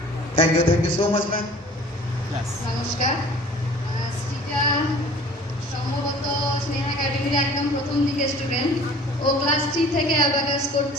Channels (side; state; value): both; normal; correlation 0.47